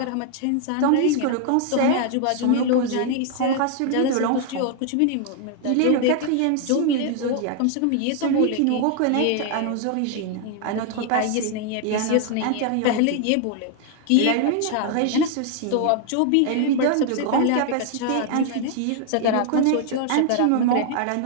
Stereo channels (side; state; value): both; different; correlation 0.00